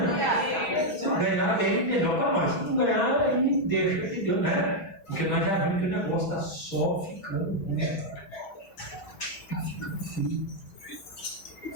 Se ganhar, bem, melhor para nós. Se não ganhar, aí deixa de Deus, né? Porque nós já vimos que o negócio está só ficando ruim. Está ficando frio.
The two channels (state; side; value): late; right; 6.2 ms